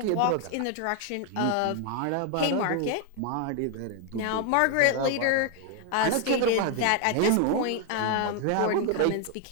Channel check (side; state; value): both; different; correlation 0.01